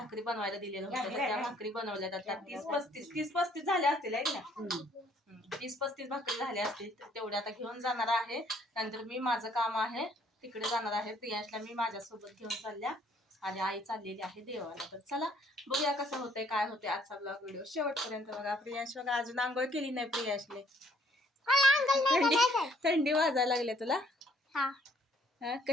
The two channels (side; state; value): both; normal; correlation 0.64